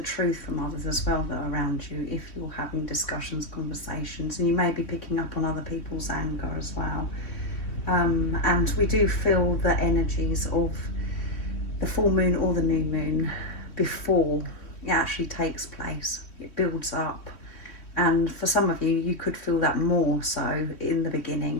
truth from others as well that are around you if you're having discussions, conversations, and you may be picking up on other people's anger as well. And we do feel the energies of the full moon or the new moon before it actually takes place. It builds up, and for some of you, you could feel that more so in the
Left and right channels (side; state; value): right; late; 3.0 ms